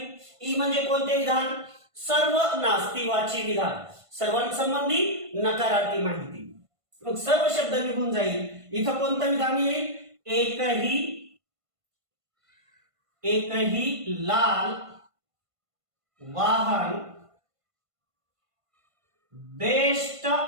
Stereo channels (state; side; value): late; left; 1.5 ms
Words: ई म्हणजे कोणते विधान, सर्व नास्तिवाची विधान, सर्वांसंबंधी नकारार्थी माहिती. मग सर्व शब्द निघून जाईल. इथं कोणतं विधान येईल, एकही लाल वाहन बेस्ट